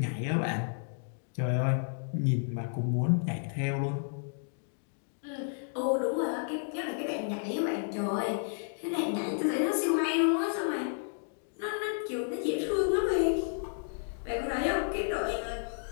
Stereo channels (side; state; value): right; silent; digital silence